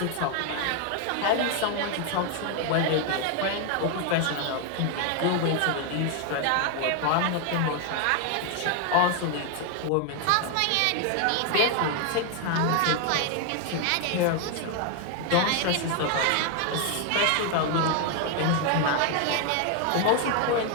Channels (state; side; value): different; both; correlation 0.01